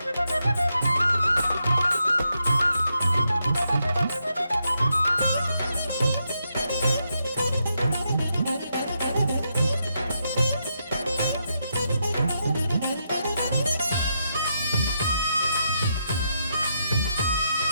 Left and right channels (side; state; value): both; inverted; correlation -0.81